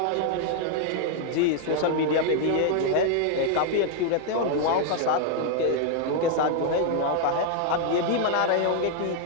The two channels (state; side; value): different; both; correlation 0.00